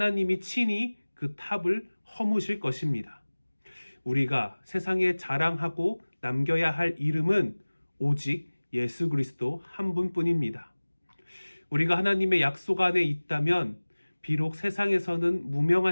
친히 그 탑을 허무실 것입니다. 우리가 세상에 자랑하고 남겨야 할 이름은 오직 예수 그리스도 한 분뿐입니다. 우리가 하나님의 약속 안에 있다면 비록 세상에서는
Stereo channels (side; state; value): both; inverted; correlation -1.00